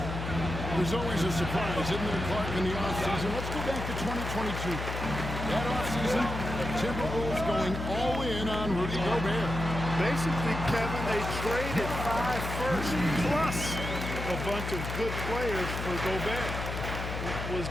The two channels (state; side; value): noise; left; hum, 5 dB below the sound